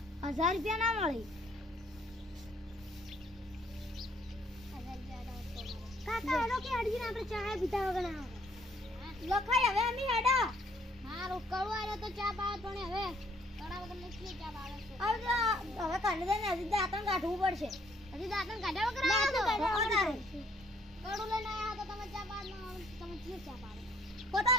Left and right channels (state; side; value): normal; both; correlation 0.63